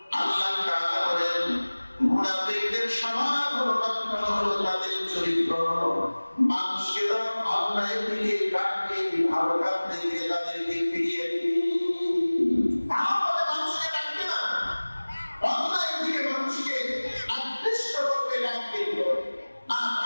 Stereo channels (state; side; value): inverted; both; correlation -1.00